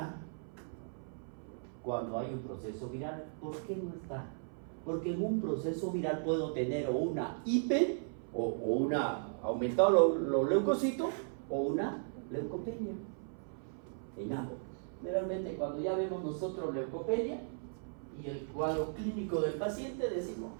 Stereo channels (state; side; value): silent; left; 54 dB below the other